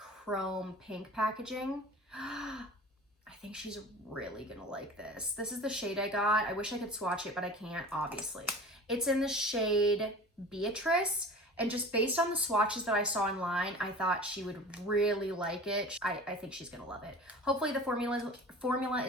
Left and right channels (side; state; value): both; normal; correlation 0.39